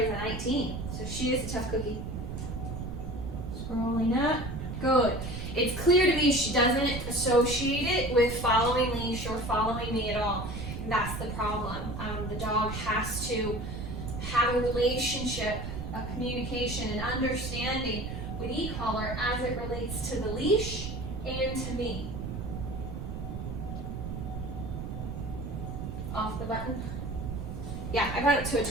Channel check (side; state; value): right; noise; rumble, 6 dB below the sound